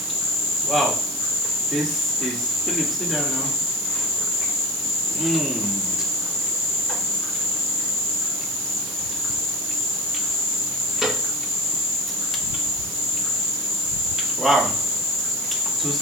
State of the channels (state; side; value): noise; right; hiss, 7 dB below the sound